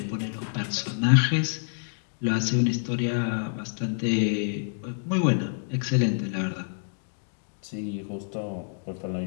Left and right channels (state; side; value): silent; right; digital silence